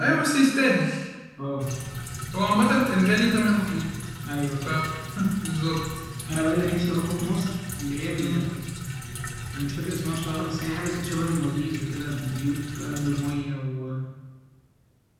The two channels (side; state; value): both; identical; correlation 1.00